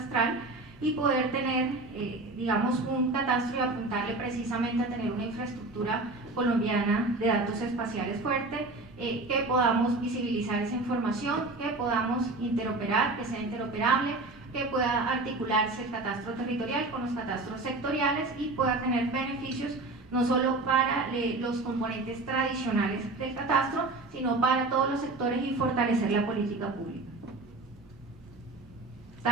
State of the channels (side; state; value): left; quieter; 3.1 dB